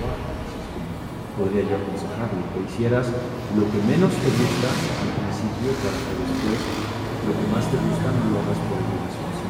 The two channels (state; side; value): identical; both; correlation 1.00